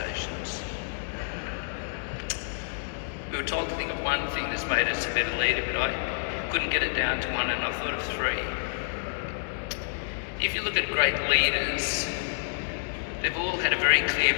We were told to think of one thing that's made us a better leader, but I couldn't get it down to one, and I thought of three. If you look at great leaders, they've all had a very clear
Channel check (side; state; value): right; silent; digital silence